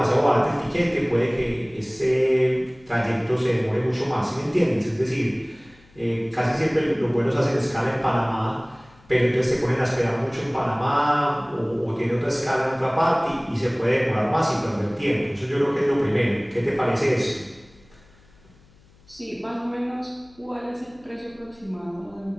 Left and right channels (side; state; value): left; noise; hum, 29 dB below the sound